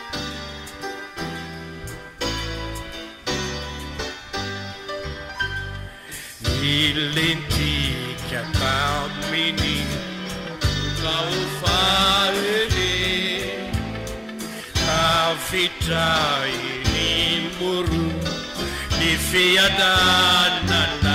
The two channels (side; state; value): both; identical; correlation 1.00